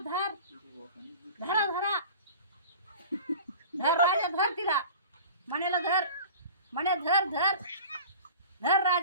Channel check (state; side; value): inverted; both; correlation -0.39